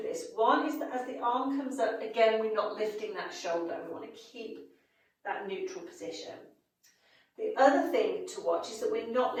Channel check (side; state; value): both; identical; correlation 1.00